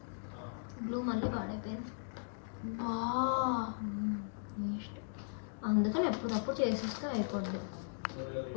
గ్లూ మళ్ళీ పాడైపోయింది. బా నెక్స్ట్ అందుకని ఎప్పుడప్పుడు చేసేస్తే అయిపోద్ది.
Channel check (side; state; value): right; silent; digital silence